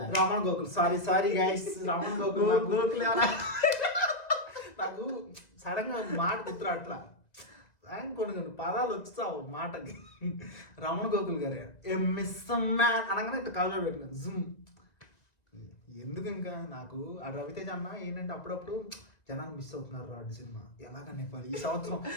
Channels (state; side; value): late; right; 1.9 ms